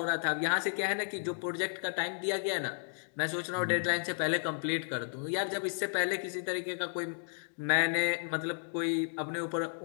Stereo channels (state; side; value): silent; right; 56 dB below the other